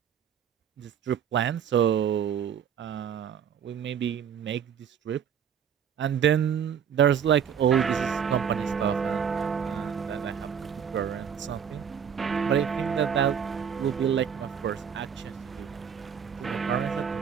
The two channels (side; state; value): left; quieter; 7.9 dB